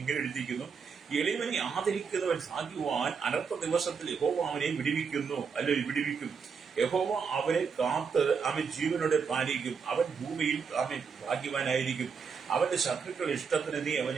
ഇങ്ങനെ എഴുതിയിരിക്കുന്നു, എളിവനെ ആദരിക്കുന്നവൻ സാധിക്കുവാൻ അനർത്ഥ ദിവസത്തിൽ യഹോവ അവനെ വിടിവിക്കും. യഹോവ അവനെ കാത്ത് ജീവനോടെ പാലിക്കും. അവൻ ഭൂമിയിൽ ഭാഗ്യവാനായിരിക്കും. അവന്റെ ശത്രുക്കൾ ഇഷ്ടത്തിന് നീ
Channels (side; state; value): left; quieter; 5.9 dB